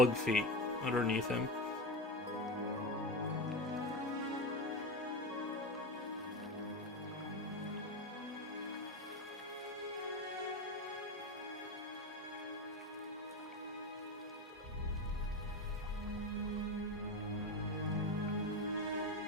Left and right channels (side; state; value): both; normal; correlation 0.20